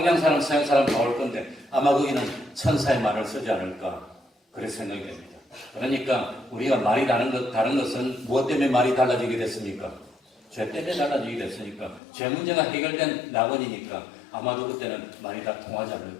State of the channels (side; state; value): right; drops out; at 12.0 s